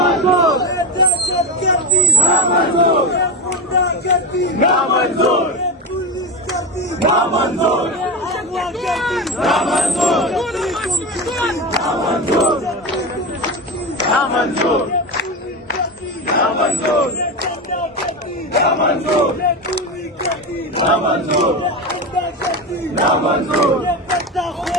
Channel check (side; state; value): both; normal; correlation 0.19